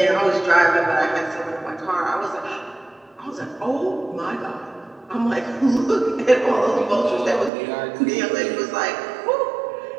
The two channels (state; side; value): drops out; left; at 7.5 s